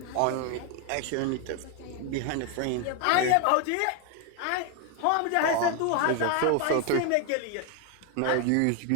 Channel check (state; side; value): different; both; correlation 0.01